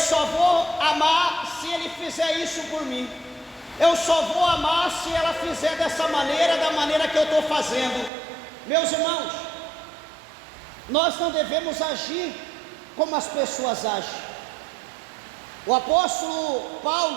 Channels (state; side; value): drops out; left; at 8.1 s